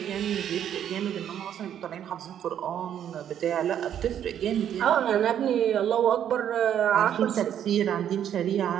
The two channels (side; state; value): left; quieter; 9.8 dB